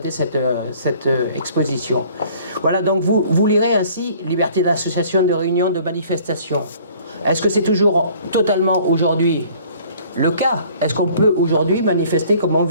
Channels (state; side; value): inverted; both; correlation -0.54